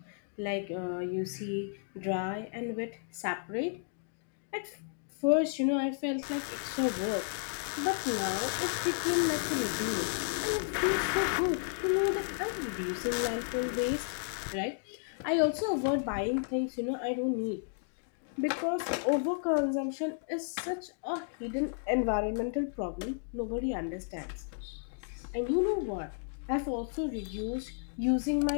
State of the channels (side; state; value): right; silent; digital silence